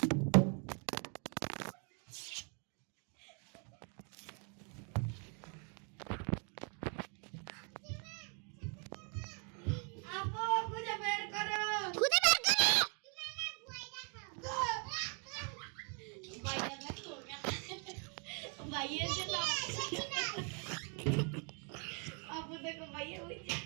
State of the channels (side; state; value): left; quieter; 38.6 dB